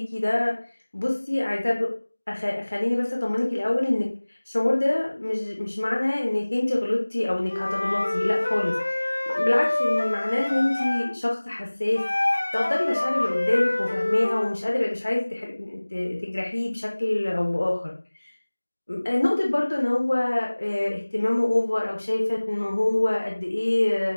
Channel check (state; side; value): inverted; both; correlation -1.00